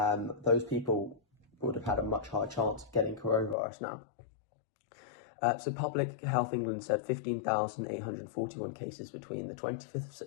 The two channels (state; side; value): drops out; right; at 3.6 s